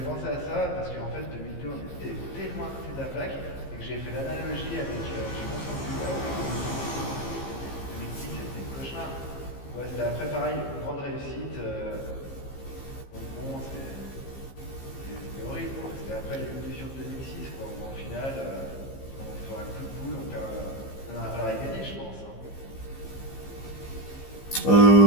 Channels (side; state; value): right; late; 15 ms